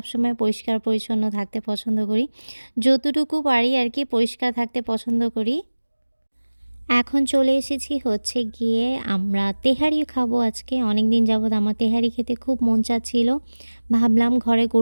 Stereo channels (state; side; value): inverted; both; correlation -1.00